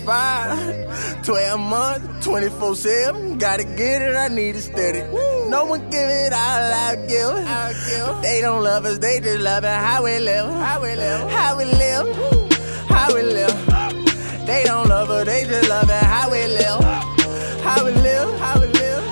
12 months, 24/7. Gotta get it, I need it steady. No one give it all I give. They don't love us, they just love it how we live. How we live, how we live, how we live. They don't love us, they just love it how we live. How we live, how we live,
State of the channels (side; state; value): both; inverted; correlation -1.00